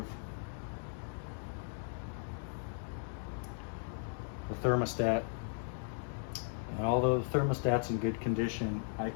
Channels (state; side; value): silent; right; digital silence